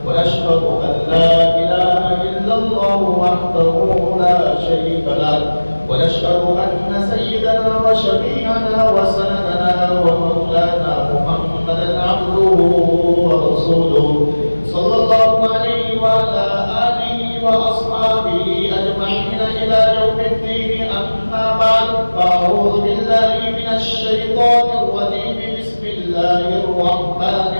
ونشهد أن لا إله إلا الله وحده لا شريك له ونشهد أن سيدنا وشفيعنا وسندنا ومولانا محمدا عبده ورسوله صلى الله عليه وعلى آله وأصحابه أجمعين إلى يوم الدين. أما بعد فأعوذ بالله من الشيطان الرجيم. بسم الله الرحمن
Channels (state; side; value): inverted; both; correlation -1.00